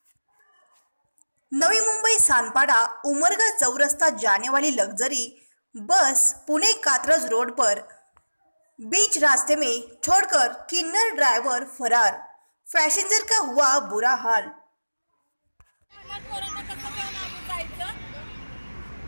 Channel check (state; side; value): inverted; both; correlation -1.00